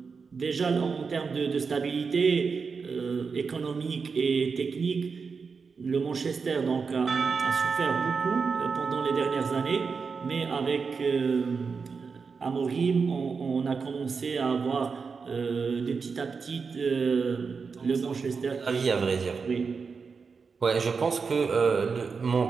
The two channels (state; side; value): quieter; left; 5.2 dB